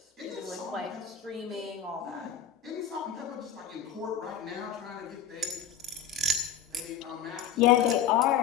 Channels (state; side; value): quieter; right; 8.1 dB